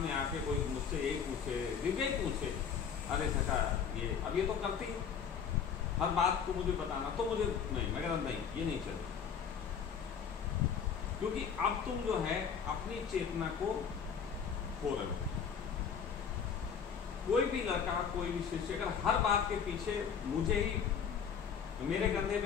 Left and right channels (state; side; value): quieter; right; 7.1 dB